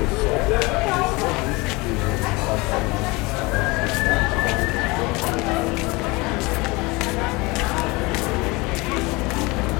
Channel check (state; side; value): quieter; right; 24.4 dB